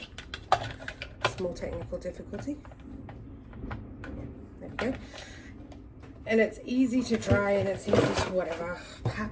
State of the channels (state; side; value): identical; both; correlation 1.00